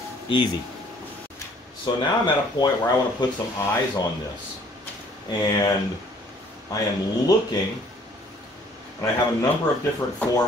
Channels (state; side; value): normal; both; correlation 0.58